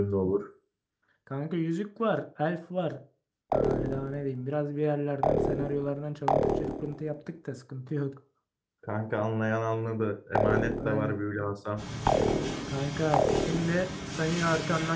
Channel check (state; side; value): identical; both; correlation 1.00